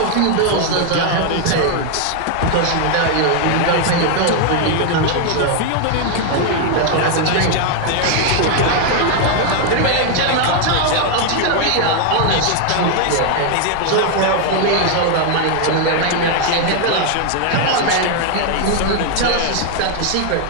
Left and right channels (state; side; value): different; both; correlation 0.00